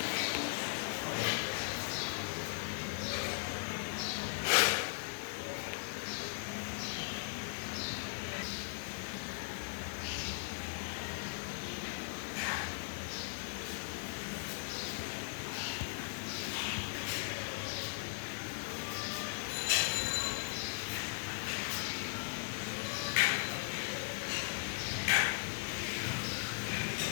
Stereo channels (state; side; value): silent; right; digital silence